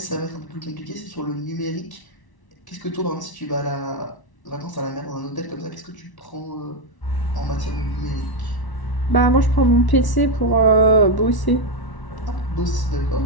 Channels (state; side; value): late; right; 1.1 ms